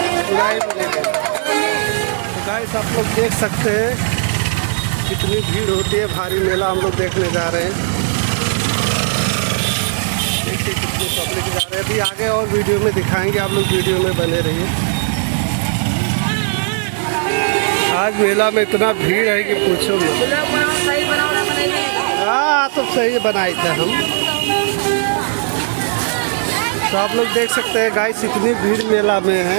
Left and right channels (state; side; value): silent; left; digital silence